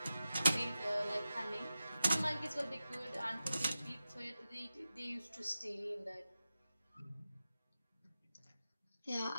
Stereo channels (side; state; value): both; inverted; correlation -0.93